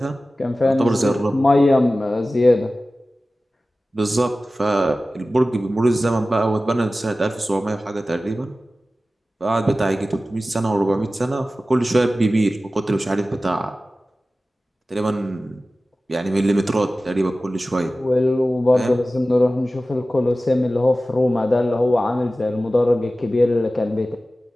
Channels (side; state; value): both; normal; correlation 0.96